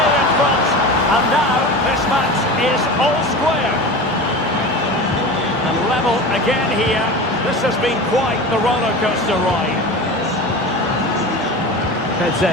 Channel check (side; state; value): both; normal; correlation 0.31